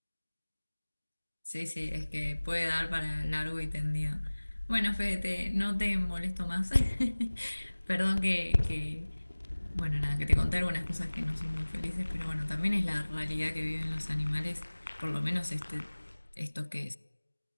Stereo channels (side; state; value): both; inverted; correlation -1.00